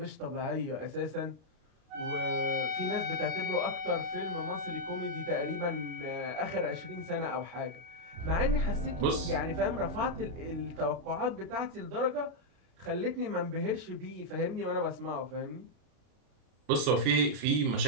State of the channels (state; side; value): late; left; 32 ms